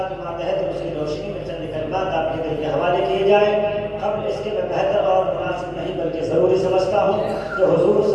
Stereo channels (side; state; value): both; identical; correlation 1.00